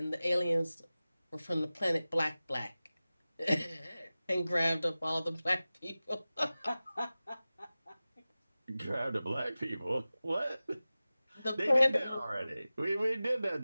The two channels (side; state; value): both; inverted; correlation -0.96